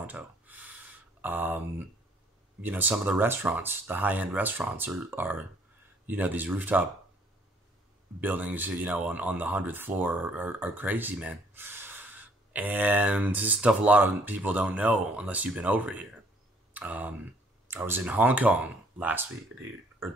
Some of the restaurants, the high-end restaurants are these rooftop buildings, on the 100th floor are crazy, man. And this is stuff a lot of people don't know unless you've been over here. I was in Hong Kong last week, or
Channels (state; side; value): normal; both; correlation 0.62